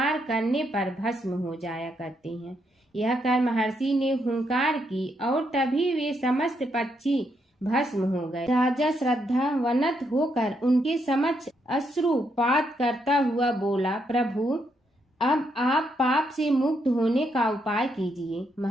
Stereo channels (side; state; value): both; normal; correlation 0.77